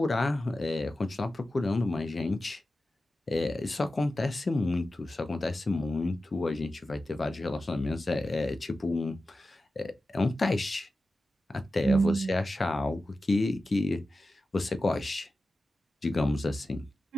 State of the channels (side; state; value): both; normal; correlation 0.93